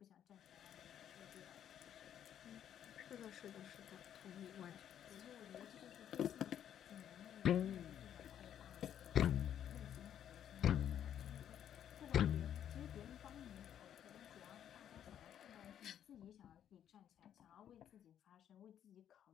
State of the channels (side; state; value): right; quieter; 10.0 dB